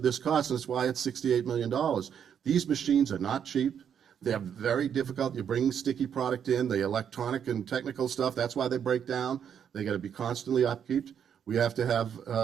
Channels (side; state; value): left; quieter; 8.3 dB